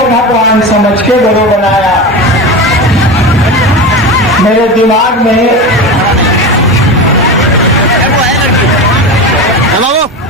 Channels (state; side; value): normal; both; correlation 0.24